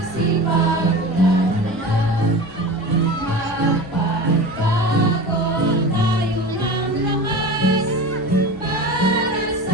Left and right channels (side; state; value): both; normal; correlation 0.32